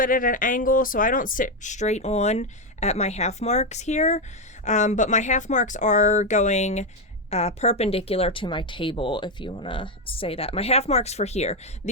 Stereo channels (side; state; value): both; normal; correlation 0.07